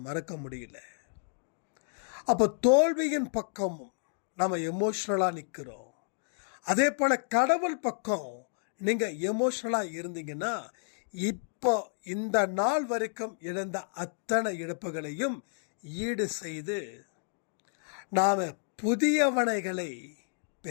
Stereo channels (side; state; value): right; silent; digital silence